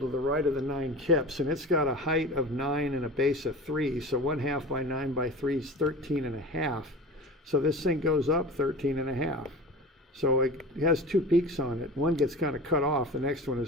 the right of the 9 kips, and it's got a height of 9 and a base of 3. So 1/2 by 9 by 3 is 13.5. So this thing goes up 13.5. So it has 2 peaks on it. One gets kind of cut off. The next one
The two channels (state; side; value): normal; both; correlation 0.34